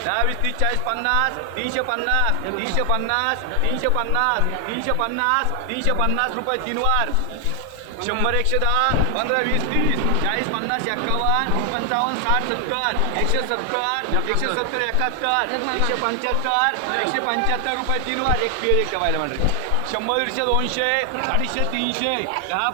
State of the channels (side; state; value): both; different; correlation 0.00